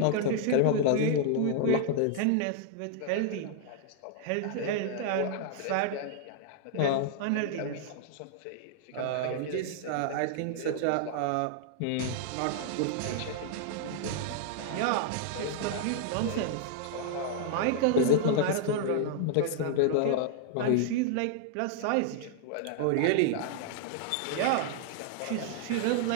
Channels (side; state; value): both; different; correlation -0.01